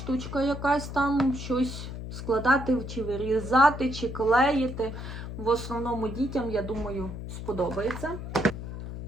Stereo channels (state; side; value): noise; left; hum, 8 dB below the sound